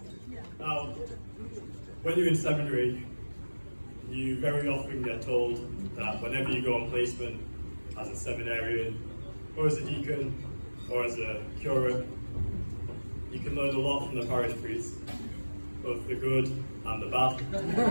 Now, when you're in seminary, you very often get told that whenever you go on placement as a seminarian, or as a deacon, or as a curate, you can learn a lot from the parish priest, both the good and the bad,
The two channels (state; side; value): inverted; both; correlation -1.00